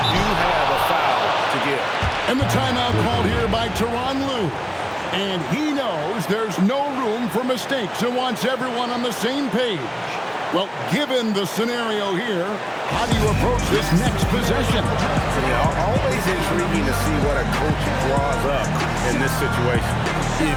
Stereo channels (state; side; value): identical; both; correlation 1.00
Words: do have a foul to give. And the timeout called here by Tyronn Lue. And he knows there's no room for mistakes and wants everyone on the same page. Well, given the scenario here, how do you approach this next possession? Always intriguing to see what a coach draws up in this situation.